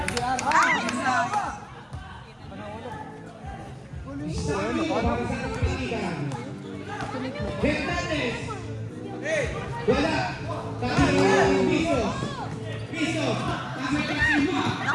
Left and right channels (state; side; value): identical; both; correlation 1.00